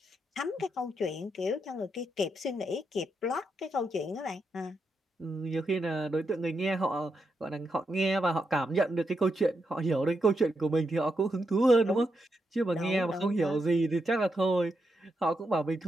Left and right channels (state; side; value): normal; both; correlation 0.83